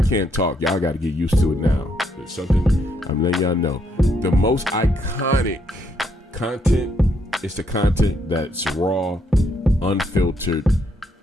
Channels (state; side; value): normal; both; correlation 0.74